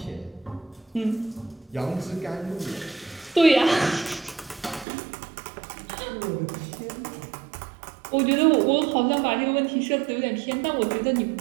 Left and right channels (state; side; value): drops out; left; at 4.9 s